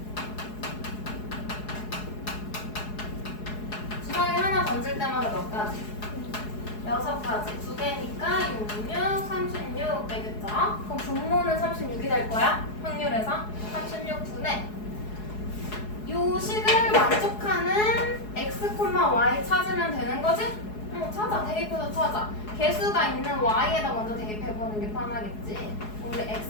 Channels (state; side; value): late; right; 4.7 ms